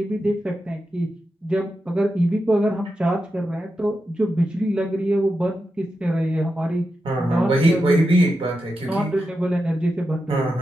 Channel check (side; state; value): both; normal; correlation 0.89